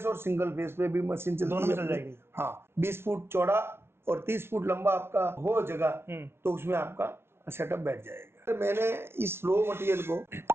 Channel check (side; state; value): left; late; 0.12 ms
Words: और सिंगल फेस पे भी मशीन चलती है। दोनों में चल जाएगी। हाँ, 20 फुट चौड़ा और 30 फुट लंबा आपका हो जगह, तो उसमें आपका सेटअप बैठ जाएगा। तो मैंने इस रो मटेरियल को,